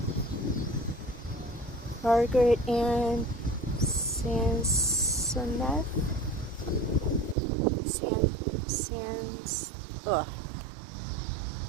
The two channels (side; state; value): left; drops out; at 7.4 s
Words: Margaret Ann Sansonet.